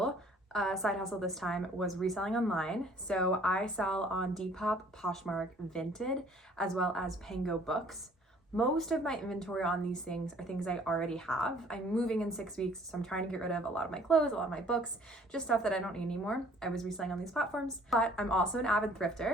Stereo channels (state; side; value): normal; both; correlation 0.56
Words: side hustle this time was reselling online. So I sell on Depop, Poshmark, Vinted, as well as Pango Books. Most of my inventory on these things are things I already have. I'm moving in 6 weeks, so I'm trying to get rid of a lot of my clothes, a lot of my books, just stuff that I don't need anymore. I was reselling on these platforms, but I'm also an avid